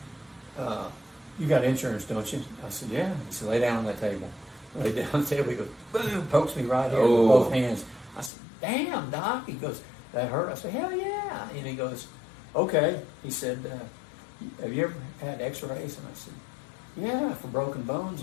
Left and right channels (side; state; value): right; drops out; at 8.3 s